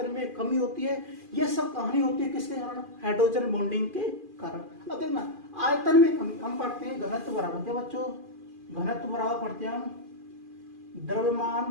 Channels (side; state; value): left; late; 2.4 ms